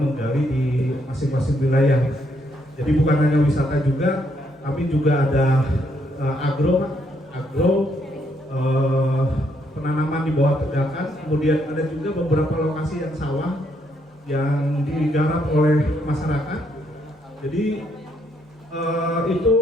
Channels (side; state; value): both; normal; correlation 0.74